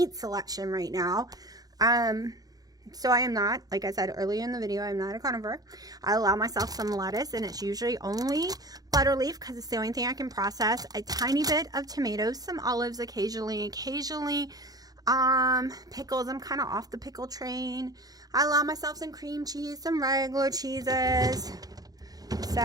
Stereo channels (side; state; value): left; late; 0.18 ms